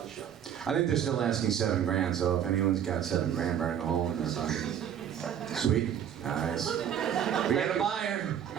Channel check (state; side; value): quieter; left; 9.3 dB